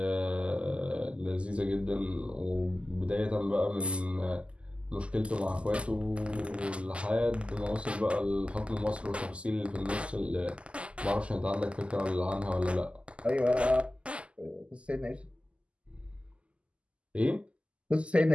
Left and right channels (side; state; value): left; late; 0.055 ms